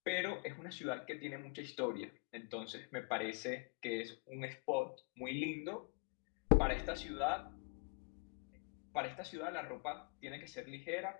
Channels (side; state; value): right; quieter; 32.9 dB